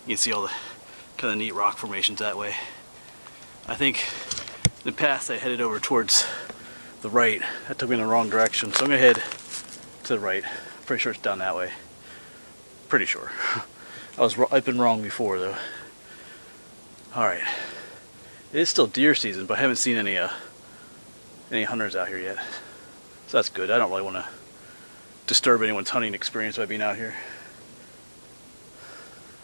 You can see all the kind of neat rock formations that way. I think in the past I headed over towards the right. That took me in the wrong direction. So I'm going to head to the right. Pretty sure it's down that way. Pretty sure. I've been wrong before though. Alright. It is still deer season, but I haven't seen any hunters out here yet. So that's good. I don't really want to disturb anyone's hunting experience by being out here.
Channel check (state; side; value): inverted; both; correlation -1.00